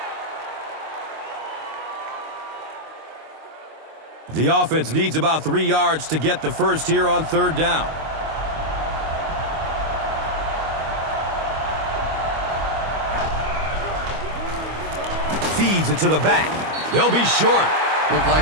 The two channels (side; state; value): left; late; 25 ms